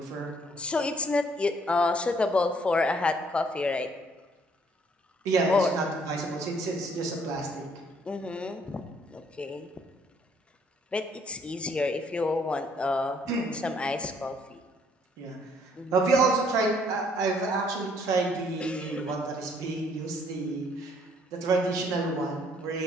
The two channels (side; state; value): both; normal; correlation 0.64